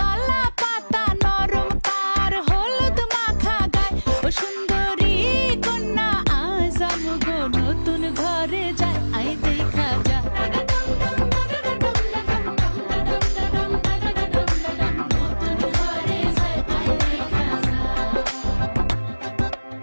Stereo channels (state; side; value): inverted; both; correlation -1.00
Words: পাতা নরম তার হলুদ মাখা গায়, ও সুন্দরী কন্যা আজ আমগো নতুন ঘরে যায়